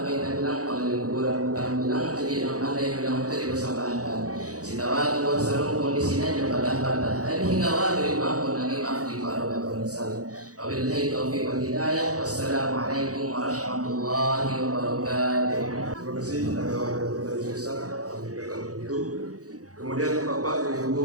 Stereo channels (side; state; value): left; late; 0.67 ms